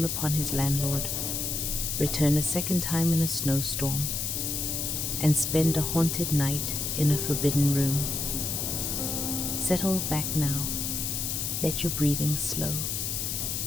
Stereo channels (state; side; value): noise; left; hiss, 1 dB below the sound